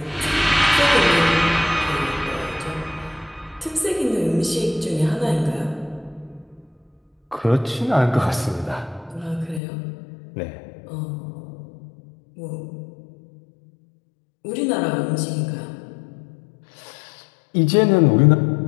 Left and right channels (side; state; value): right; drops out; at 9.6 s